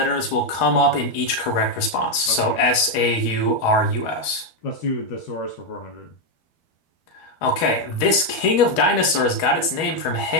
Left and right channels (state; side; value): late; right; 12 ms